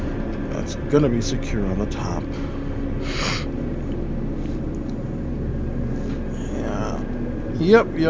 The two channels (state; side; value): identical; both; correlation 1.00